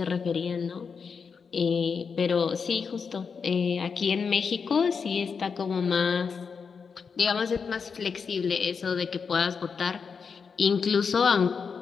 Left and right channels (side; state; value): right; quieter; 5.8 dB